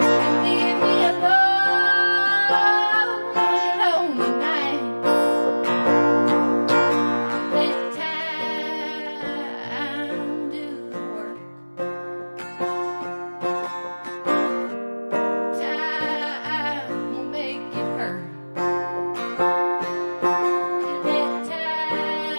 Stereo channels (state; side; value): inverted; both; correlation -1.00